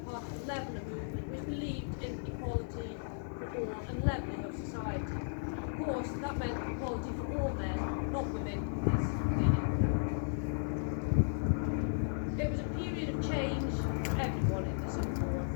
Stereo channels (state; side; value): silent; right; digital silence